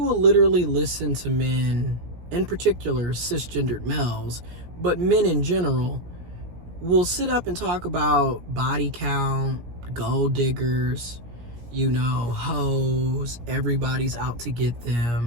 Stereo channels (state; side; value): late; left; 17 ms